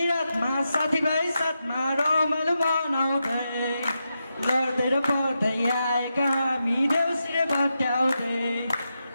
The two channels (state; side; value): inverted; both; correlation -0.87